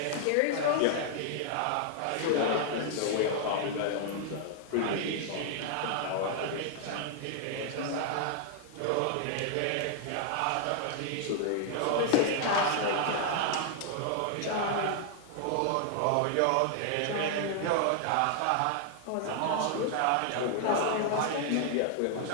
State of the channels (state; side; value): different; both; correlation 0.00